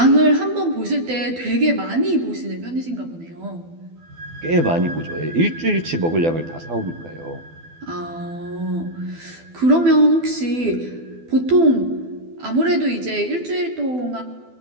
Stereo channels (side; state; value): left; late; 12 ms